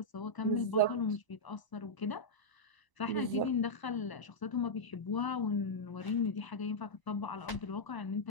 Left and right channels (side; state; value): right; late; 1.0 ms